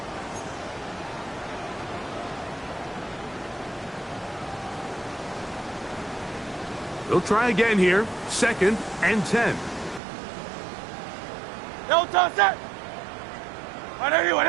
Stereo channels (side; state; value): left; drops out; at 10.0 s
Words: They'll try again here. 2nd and 10. No touch that. On anyone,